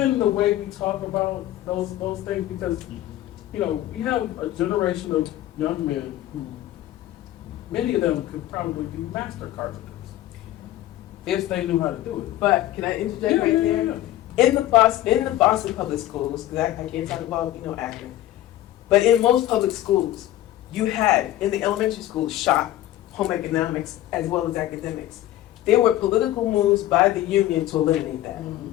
the way we talk about those things, because, you know, we have a generation of young men who, many of them could probably be master carpenters if they knew how to do it. But can I interject right there? In the Boston public schools, because I can't talk about, you know, Akron, but in most public schools, you had, in the elementary schools, shop, home economics, as well as academics. There were political moves by the union to eliminate that.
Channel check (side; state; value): right; quieter; 14.1 dB